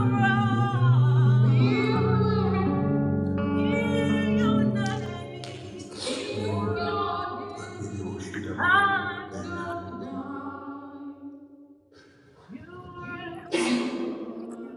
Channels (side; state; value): both; identical; correlation 1.00